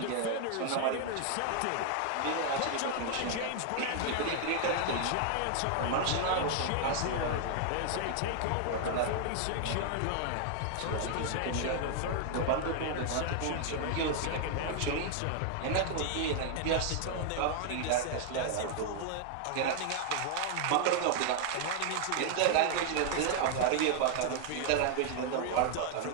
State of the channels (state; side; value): different; both; correlation 0.00